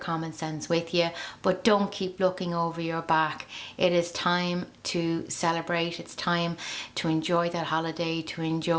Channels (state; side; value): identical; both; correlation 1.00